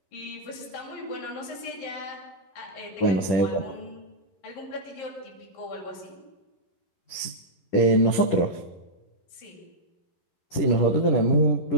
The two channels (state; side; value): late; right; 11 ms